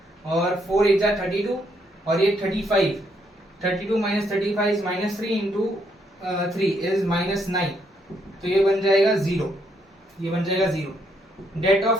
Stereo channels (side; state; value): both; normal; correlation 0.73